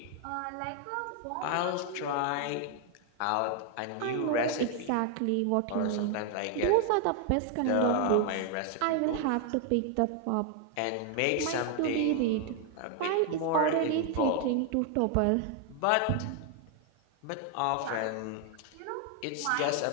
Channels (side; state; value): both; different; correlation 0.00